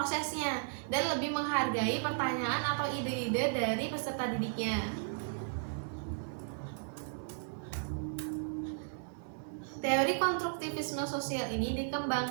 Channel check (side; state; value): left; silent; 54 dB below the other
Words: dan lebih menghargai pertanyaan atau ide-ide dari peserta didiknya. Teori konstruktivisme sosial ini